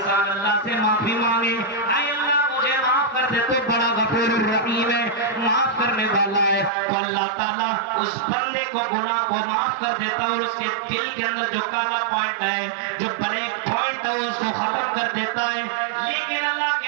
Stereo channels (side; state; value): left; drops out; at 6.7 s